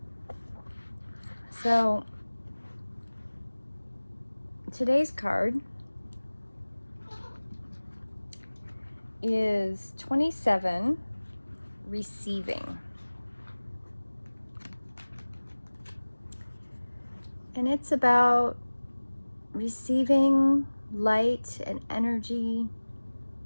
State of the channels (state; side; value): inverted; both; correlation -1.00